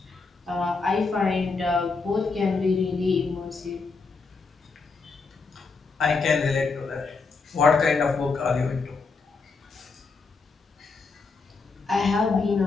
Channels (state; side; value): quieter; right; 4.4 dB